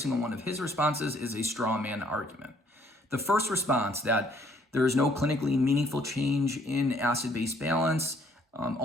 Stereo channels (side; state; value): both; normal; correlation 0.63